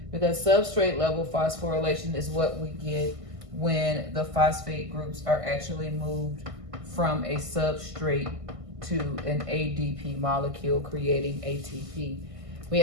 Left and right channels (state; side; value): late; left; 1.5 ms